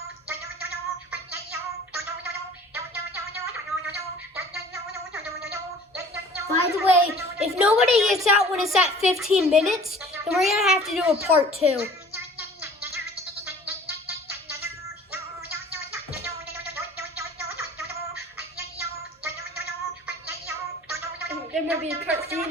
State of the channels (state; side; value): normal; both; correlation 0.48